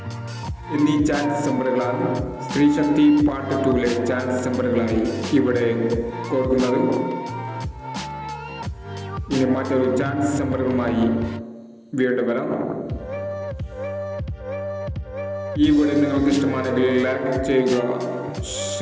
എന്നീ ചാൻസ് നമ്പറുകളാണ് സ്ത്രീശക്തി പാർട്ട് 2 ചാൻസ് നമ്പറുകളായി ഇവിടെ കൊടുക്കുന്നത്. ഇനി മറ്റൊരു ചാൻസ് നമ്പറുകളുമായി വീണ്ടും വരാം. ഈ വീഡിയോ നിങ്ങൾക്ക് ഇഷ്ടമാണെങ്കിൽ ലൈക്ക് ചെയ്യുക,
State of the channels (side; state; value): both; identical; correlation 1.00